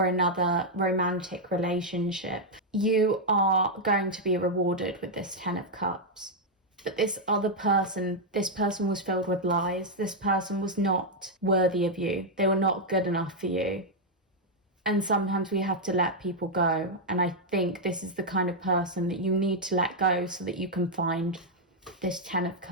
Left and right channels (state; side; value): normal; both; correlation -0.02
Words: another romantic relationship. You are going to be rewarded with this Ten of Cups. But this other person, this person was filled with lies. This person was not worthy of you. They were not good enough for you. And sometimes we have to let people go. And I think this is the kind of person that you need to let go so that you can find this Ten of